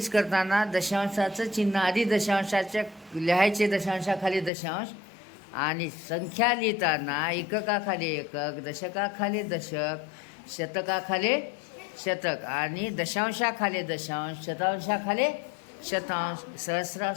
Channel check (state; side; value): drops out; right; at 4.5 s